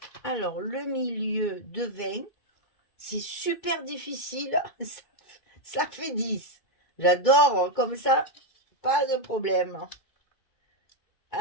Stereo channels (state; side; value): late; right; 2.2 ms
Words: Alors, le milieu de 20, c'est super difficile. Ça fait 10. J'adore comme ça, pas de problème.